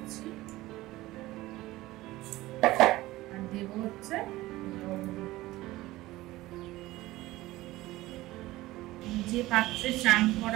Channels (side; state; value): left; quieter; 17.9 dB